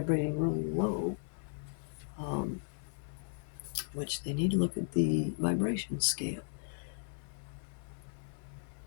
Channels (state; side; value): silent; right; digital silence